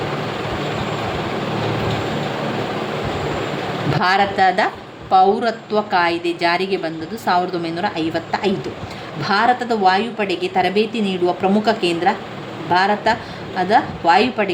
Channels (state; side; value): identical; both; correlation 1.00